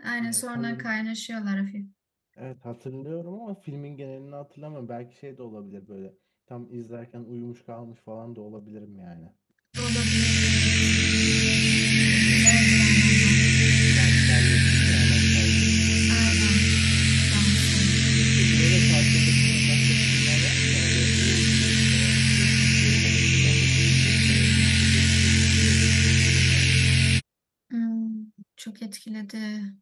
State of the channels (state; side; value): identical; both; correlation 1.00